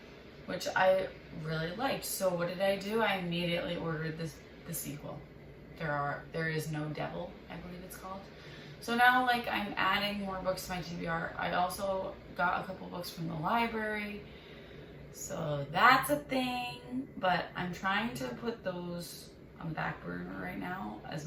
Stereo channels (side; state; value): both; identical; correlation 1.00